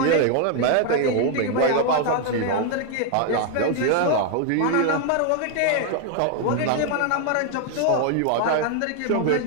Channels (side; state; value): both; different; correlation 0.00